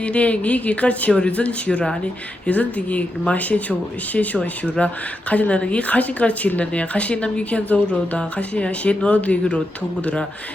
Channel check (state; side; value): normal; both; correlation 0.86